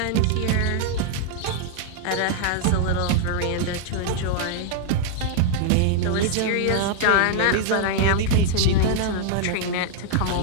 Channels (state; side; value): different; both; correlation 0.00